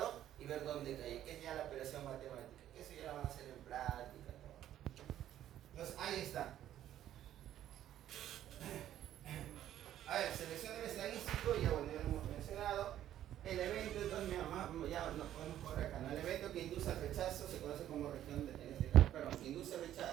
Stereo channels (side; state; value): left; quieter; 11.9 dB